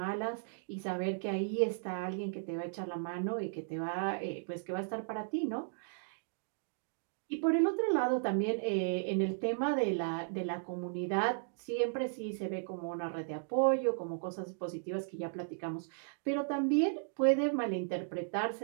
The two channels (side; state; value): left; silent; digital silence